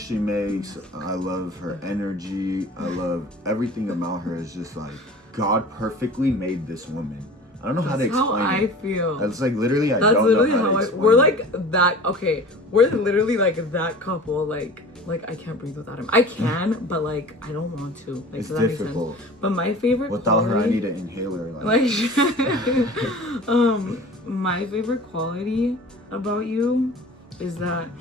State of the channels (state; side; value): normal; both; correlation 0.40